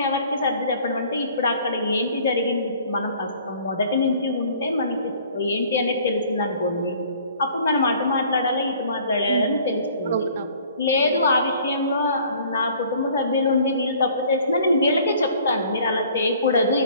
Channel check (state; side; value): inverted; both; correlation -0.54